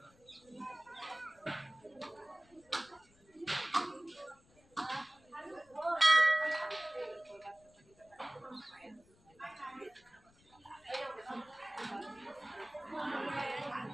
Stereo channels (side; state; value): left; noise; rumble, 29 dB below the sound